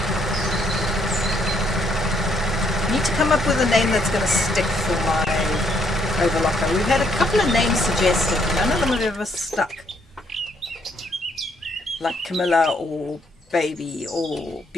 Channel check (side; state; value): both; normal; correlation 0.69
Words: Need to come up with a name that's going to stick for my overlocker. We've had a couple of names suggested. None of them have ever stuck. Like Camilla or Baby or